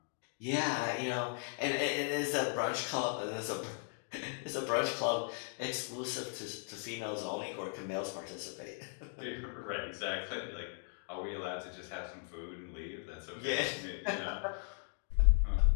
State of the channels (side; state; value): right; silent; 53 dB below the other